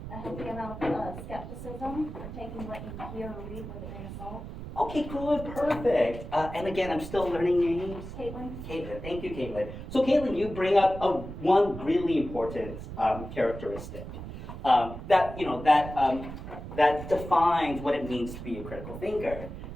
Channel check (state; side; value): noise; right; rumble, 10 dB below the sound